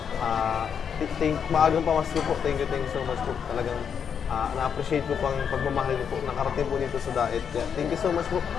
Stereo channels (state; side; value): quieter; right; 7.4 dB